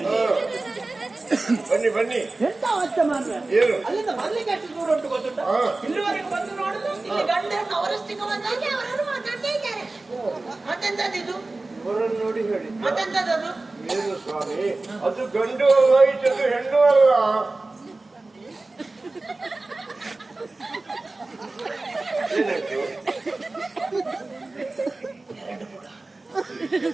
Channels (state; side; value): quieter; left; 3.2 dB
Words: ಬನ್ನಿ ಬನ್ನಿ. ಎಂತ ಅವಸ್ಥೆ ಮಾಡ್ರೆ? ಏನು? ಅಲ್ಲಿಂದ ಬರ್ಲಿಕ್ಕೆ ಎಷ್ಟು ದೂರ ಉಂಟು ಗೊತ್ತುಂಟ? ಇಲ್ಲಿವರೆಗೆ ಬಂದು ನೋಡುದು, ಇಲ್ಲಿ ಗಂಡ ಹೆಣ್ಣು ಅವರಷ್ಟಕ್ಕೆ ಬಂದಾಗಿ ಅವರು ಮಾತಾಡ್ತಾ ಇದ್ದಾರೆ. ಮತ್ತೆಂತದ್ದು? ಇವರನ್ನು ನೋಡಿ ಹೇಳಿ. ಮತ್ತೆಂತದ್ದು? ಏನು ಸ್ವಾಮಿ? ಅದು ಗಂಡು ಅಲ್ಲ, ಇದು ಹೆಣ್ಣು ಅಲ್ಲ. ಏನಾಯ್ತು?